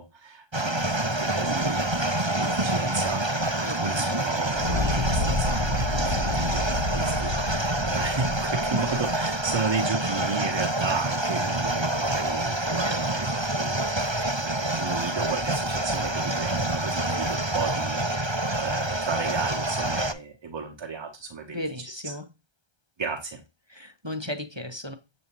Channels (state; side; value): late; left; 1.3 ms